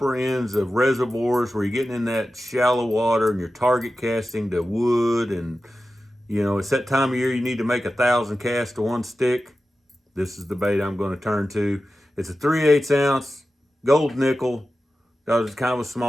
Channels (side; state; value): both; normal; correlation 0.93